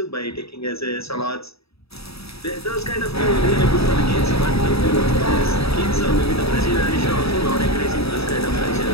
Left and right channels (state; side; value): late; right; 0.77 ms